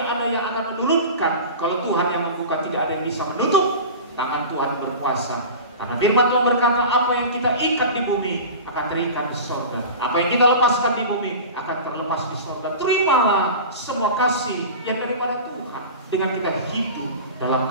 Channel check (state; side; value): inverted; both; correlation -0.33